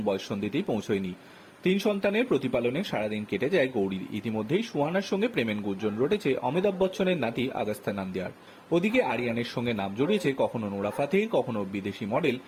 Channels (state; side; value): identical; both; correlation 1.00